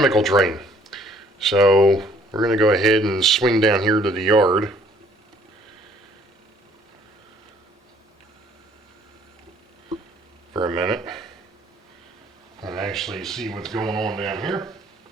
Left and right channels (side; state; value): both; normal; correlation 0.60